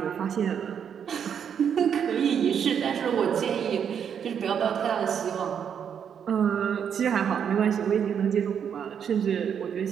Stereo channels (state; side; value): quieter; left; 8.0 dB